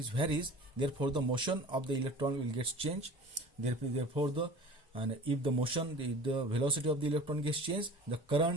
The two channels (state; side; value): normal; both; correlation 0.41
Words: varies, therefore the motion of the electron will get changed. Therefore if the motion, the velocity of the electron gets changed, the